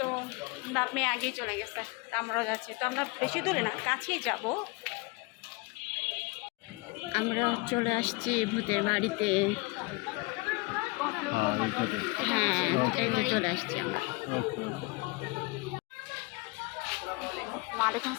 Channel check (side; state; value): right; quieter; 25.8 dB